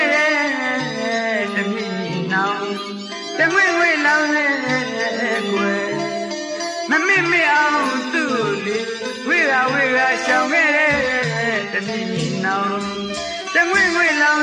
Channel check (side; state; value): both; identical; correlation 1.00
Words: ့တဲ့တမိမိနောင်တငွေငွေလောင်တဲ့ကွယ်မမေ့မေ့အောင်သူ့လေဝိရရှောင်ခဲ့တဲ့တမိမိနောင်တငွေငွေလောင